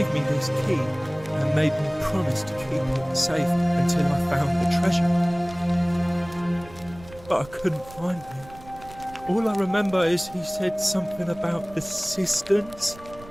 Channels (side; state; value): right; noise; rumble, 20 dB below the sound